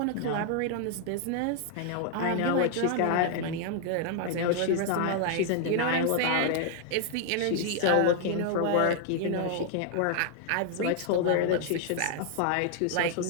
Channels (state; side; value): different; both; correlation 0.00